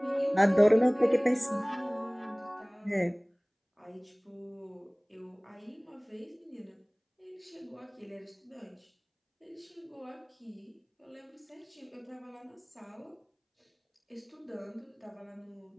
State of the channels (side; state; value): both; identical; correlation 1.00